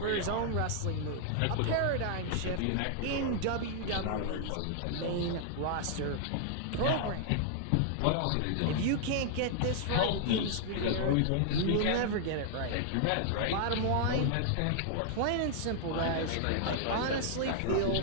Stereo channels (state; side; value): different; both; correlation -0.01